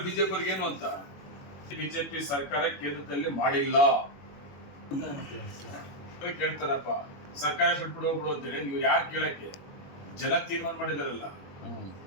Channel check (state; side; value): late; right; 21 ms